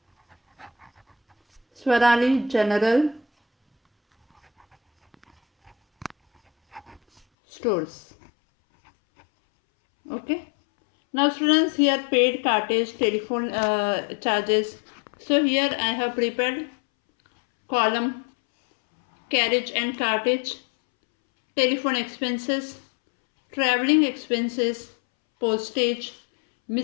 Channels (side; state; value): right; drops out; at 7.2 s